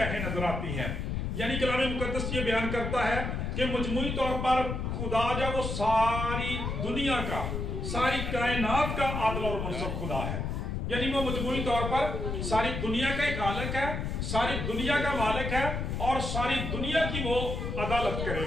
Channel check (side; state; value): left; noise; rumble, 3 dB below the sound